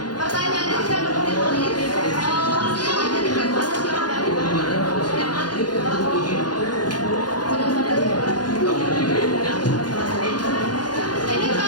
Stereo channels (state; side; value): late; right; 0.70 ms